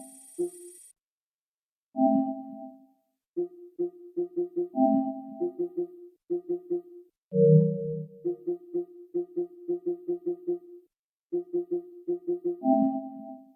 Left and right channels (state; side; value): identical; both; correlation 1.00